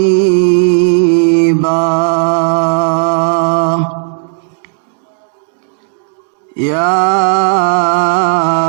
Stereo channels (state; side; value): silent; left; digital silence